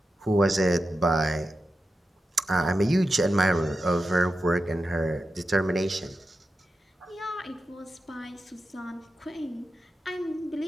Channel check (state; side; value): normal; both; correlation 0.90